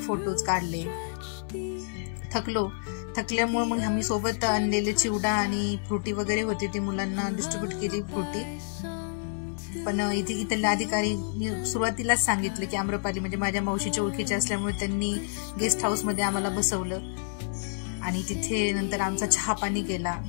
फोटोज काढले. थकल्यामुळे मग आम्ही सोबत आणलेले चिवडा आणि फ्रुटी वगैरे होते, ते मुलांना डिस्ट्रीब्यूट केली फ्रुटी. पण इथल्या अधिकारी सुरुवातीलाच सांगितलं की आम्रपाली, म्हणजे माझ्या मावशीच्या ओळखीचे असल्यामुळे त्यांनी गेस्ट हाऊस मध्ये आम्हाला बसवलं आणि तिथे नंतर आमचा चहा पाणी केला.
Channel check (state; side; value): silent; right; digital silence